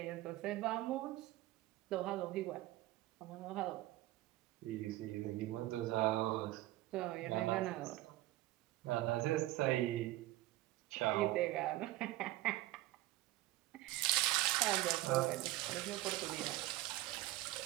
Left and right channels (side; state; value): left; quieter; 16.7 dB